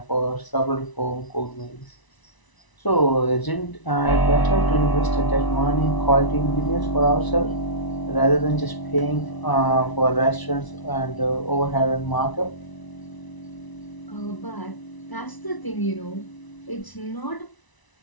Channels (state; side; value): late; right; 1.0 ms